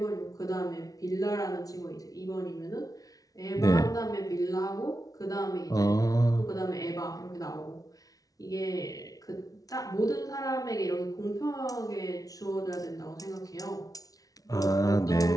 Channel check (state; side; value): late; right; 0.18 ms